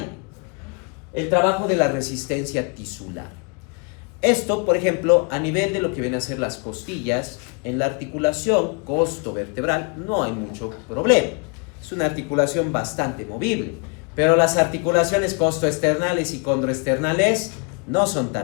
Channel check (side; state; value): right; quieter; 34.0 dB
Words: El trabajo de la resistencia tisular. Esto, por ejemplo, a nivel de lo que vienen a ser las costillas, en la articulación costovertebral no hay mucho problema. Es una articulación bastante movible, pero las articulaciones costoesternales y condroesternales no son